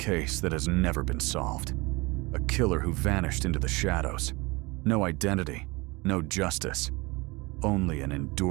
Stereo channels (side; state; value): left; quieter; 24.7 dB